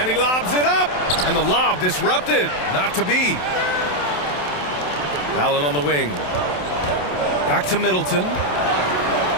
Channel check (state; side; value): late; right; 27 ms